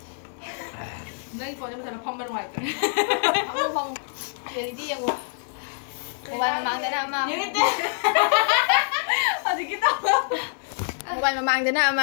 Đây có cho nó phong bên ngoài. Không không. Để đi em một. Một bài mà mang cái nào mà. Những cái tên. À thì cái tao. Một bài mà mang cái nào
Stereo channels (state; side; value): silent; right; 61 dB below the other